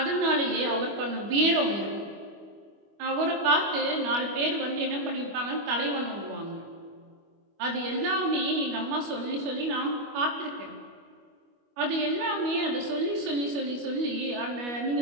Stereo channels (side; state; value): left; late; 25 ms